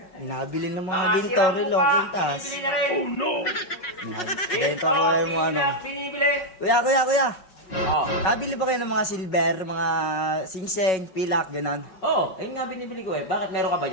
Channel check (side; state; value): right; late; 5.4 ms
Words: nabili ng mga Makasirang ginto relo, mukha, kwintas. binibili na rin. Oh no! Benta ko kayo mo ano. pilak, binibili. Kuya. Oh. Nabili ba kayo ng mga silver, mga singseng, pilak, ganon? Oh, ayun nga binibili ko eh. Bakit meron ka ba